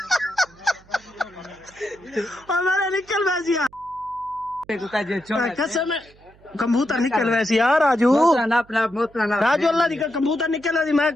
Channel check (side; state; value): right; noise; hum, 27 dB below the sound